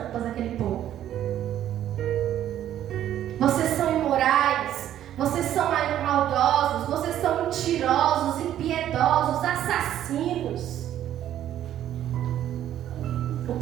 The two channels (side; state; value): left; quieter; 11.5 dB